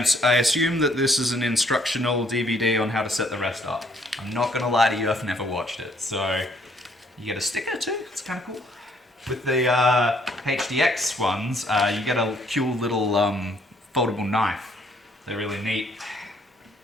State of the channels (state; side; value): normal; both; correlation 0.65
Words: assume that this is an instructional DVD on how to set the rest up. I'm not going to lie to you, I've never watched it. So, you get a sticker too, it's kind of cool. With the HDX ones, you get a cool little foldable knife. They're really neat.